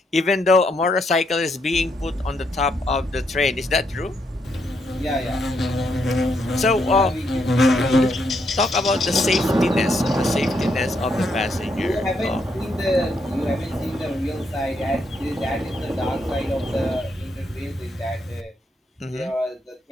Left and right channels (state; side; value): normal; both; correlation 0.76